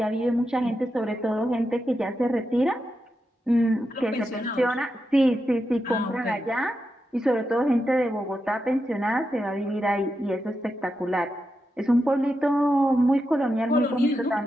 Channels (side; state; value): both; normal; correlation 0.87